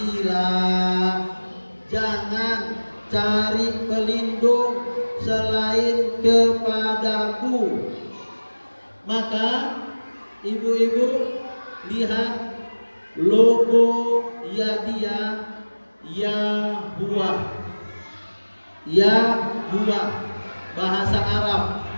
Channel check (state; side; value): inverted; both; correlation -1.00